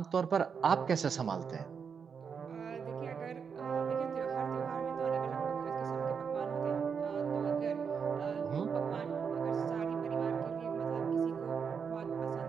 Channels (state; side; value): quieter; left; 6.4 dB